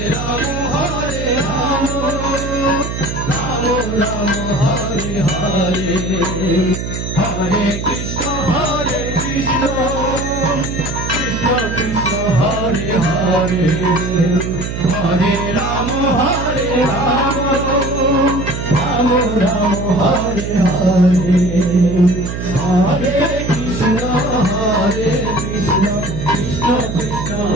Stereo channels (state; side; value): noise; right; hum, 5 dB below the sound